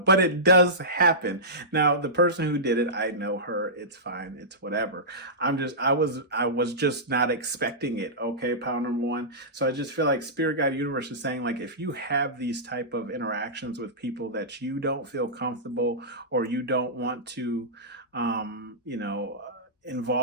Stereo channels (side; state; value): both; normal; correlation -0.16